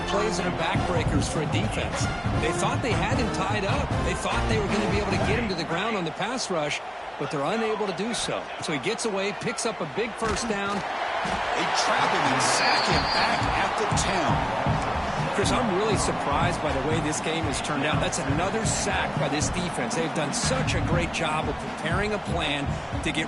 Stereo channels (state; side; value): identical; both; correlation 1.00